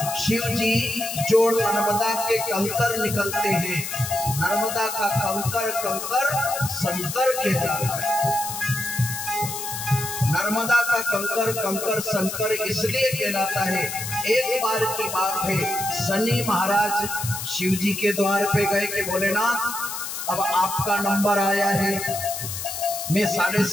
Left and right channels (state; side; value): noise; left; hiss, 6 dB below the sound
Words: शिव जी जो नर्मदा के कंकर निकलते हैं, नर्मदा का कंकर कंकर शंकर कहलाता है। नर्मदा का कंकर कंकर शंकर इसलिए कहलाता है। एक बार की बात है, शनि महाराज शिव जी के द्वार पे गए कि भोलेनाथ अब आपका नंबर आया है, मैं